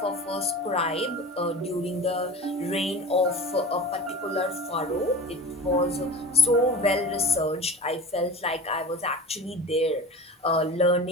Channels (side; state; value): both; normal; correlation 0.33